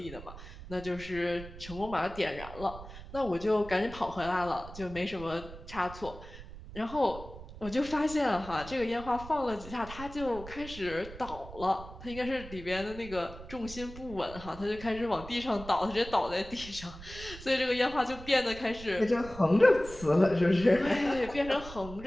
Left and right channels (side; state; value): right; noise; rumble, 14 dB below the sound